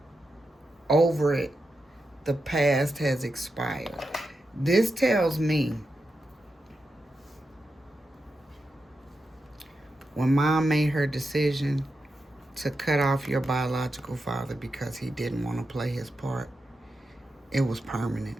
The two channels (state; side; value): normal; both; correlation 0.88